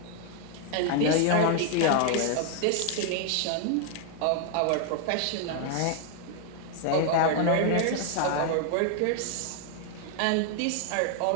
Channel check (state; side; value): different; both; correlation 0.00